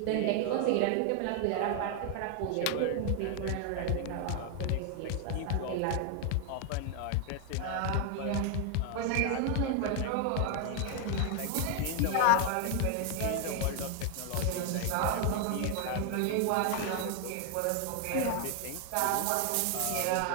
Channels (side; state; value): both; different; correlation 0.00